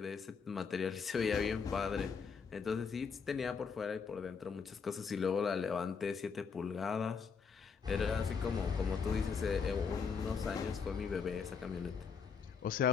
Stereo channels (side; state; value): right; quieter; 5.8 dB